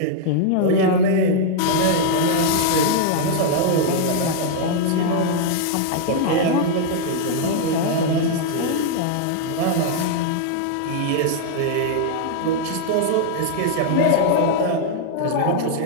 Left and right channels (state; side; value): different; both; correlation -0.01